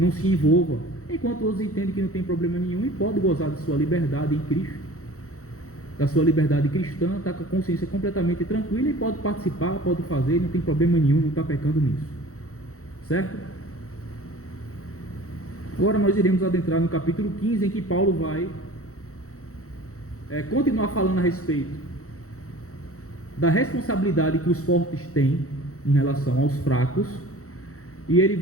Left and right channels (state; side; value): late; right; 0.64 ms